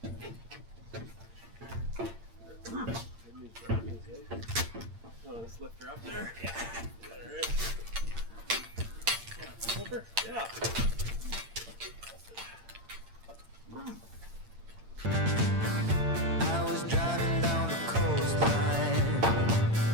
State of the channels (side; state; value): left; late; 8.7 ms